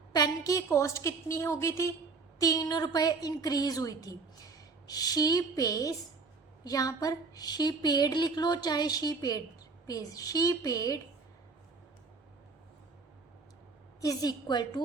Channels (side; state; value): left; quieter; 4.3 dB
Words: पेन की कॉस्ट कितनी हो गई थी? ₹3 इंक्रीज हुई थी। शी पेज, यहाँ पर शी पेड लिख लो, चाहे she paid is equal